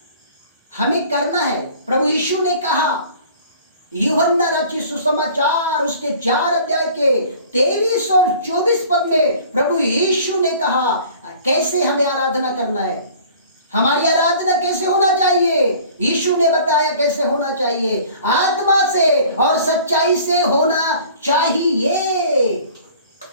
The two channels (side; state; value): both; inverted; correlation -0.48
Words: हमें करना है। प्रभु यीशु ने कहा, यूहन्ना रचित सुसमाचार उसके 4 अध्याय के 23 और 24 पद में प्रभु यीशु ने कहा कैसे हमें आराधना करना है। हमारी आराधना कैसे होना चाहिए? यीशु ने बताया कैसे होना चाहिए, आत्मा से और सच्चाई से होना चाहिए।